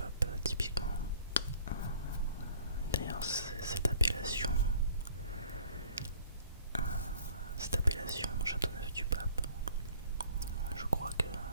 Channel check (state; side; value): inverted; both; correlation -0.53